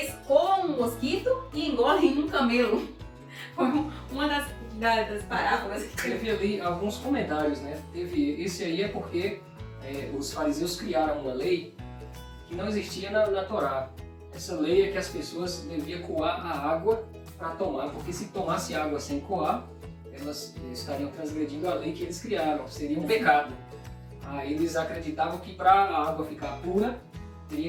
comem um mosquito e engolem um camelo. Foi uma das parábolas. Teve ali alguns comentários, né? Esse aí é porque os fariseus criaram uma lei que não existia na Torá. Essa lei é que as pessoas deviam coar a água para tomar, porque se tomasse água sem coar, elas estariam transgredindo a lei que eles criaram, seria um pecado. Aí eles acreditavam que para a água ficar pura,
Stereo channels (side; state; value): both; identical; correlation 1.00